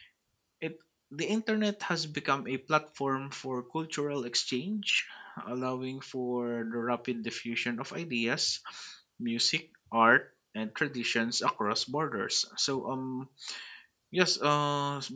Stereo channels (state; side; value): identical; both; correlation 1.00